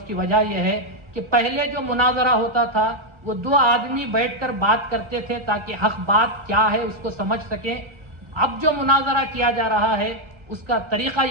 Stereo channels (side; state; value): left; late; 1.4 ms